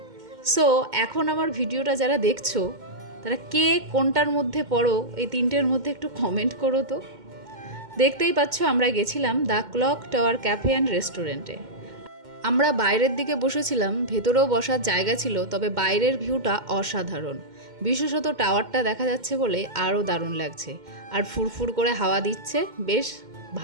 সো এখন আমার ভিডিওটা যারা দেখছো তারা কে কোনটার মধ্যে পড়ো, এই তিনটের মধ্যে একটু কমেন্ট করো তো। দেখতেই পাচ্ছ আমরা গেছিলাম the clock tower cafe and রেস্টুরেন্টে। আমরা বাইরের দিকে বসেছিলাম, ভেতরেও বসার জায়গা ছিল, তবে বাইরের ভিউটা অসাধারণ। বিশেষত টাওয়ারটা দেখা যাচ্ছে বলে আরও দারুণ লাগছে, আর ফুরফুর করে হাওয়া দিচ্ছে, বেশ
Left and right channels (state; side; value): late; left; 2.1 ms